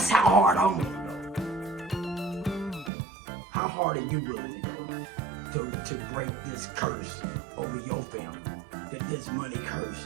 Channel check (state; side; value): drops out; left; at 2.9 s